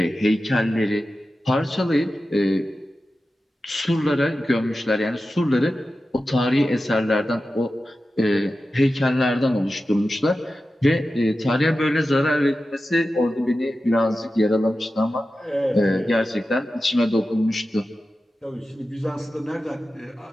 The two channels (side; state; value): both; normal; correlation 0.93